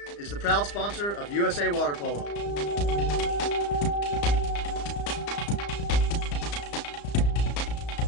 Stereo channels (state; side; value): late; right; 35 ms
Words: is the proud sponsor of USA Water Polo.